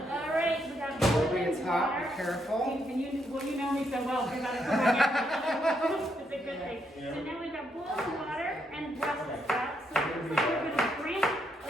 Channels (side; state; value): both; normal; correlation 0.78